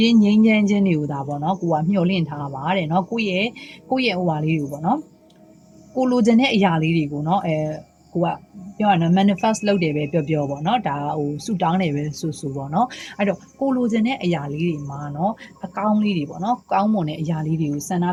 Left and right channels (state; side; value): identical; both; correlation 1.00